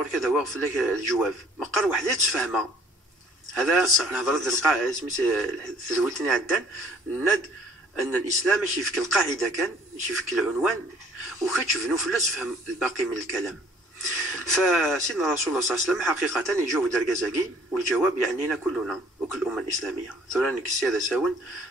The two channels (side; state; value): both; normal; correlation 0.57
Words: كذا واقف لك الجواب مقر وحده تفهمها هذا نهضر القاعدة سميت تزولتني عدان ند أن الإسلام ماشي يفك القاعدة كان ماشي يفك العنوان وكتشوف نفلس فهم الباقي من الكلام. فسيدنا رسول الله صلى الله عليه وسلم حقيقة يجاوب درجازاكي والجواب يعنينا كلنا وكل الأمة الإسلامية ثورانك السيادة ساون